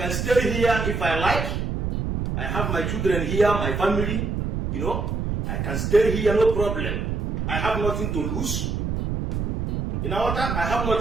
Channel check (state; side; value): noise; right; rumble, 1 dB below the sound